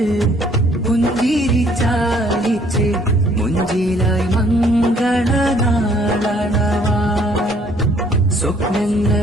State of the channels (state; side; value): normal; both; correlation 0.61